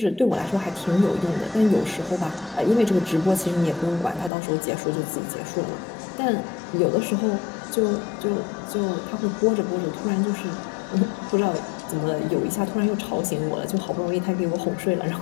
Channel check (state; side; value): drops out; right; at 4.3 s